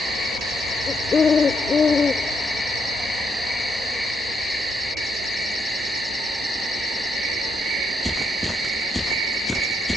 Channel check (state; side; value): normal; both; correlation 0.75